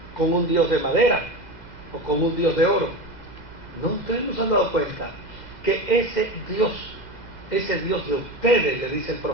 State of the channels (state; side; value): late; right; 2.0 ms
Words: con un Dios de madera o con un Dios de oro. No, ustedes no se han dado cuenta que ese Dios de ustedes, le dice el